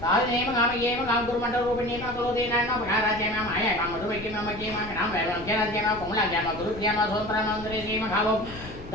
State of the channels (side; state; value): left; noise; rumble, 15 dB below the sound